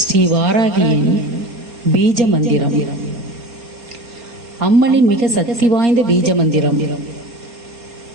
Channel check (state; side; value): late; left; 3.8 ms